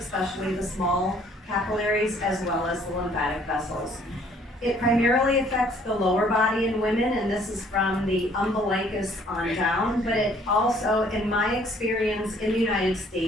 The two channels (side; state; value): both; normal; correlation 0.60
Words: the small capillaries, as well as the lymphatic vessels. It primarily affects the lower body in women, and this is from the umbilicus on down, but it also, in my experience in the United